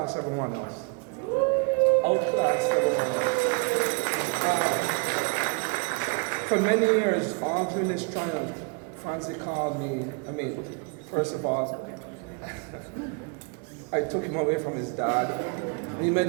everyone else. Outclass everyone else. For many years, all during this triumph, Frantzdy called me, first of all, I took him away from his dad. We made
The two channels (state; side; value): quieter; left; 33.8 dB